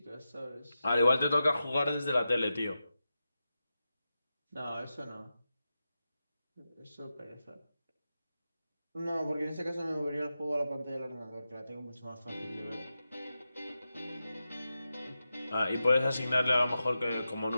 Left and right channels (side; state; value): both; inverted; correlation -0.91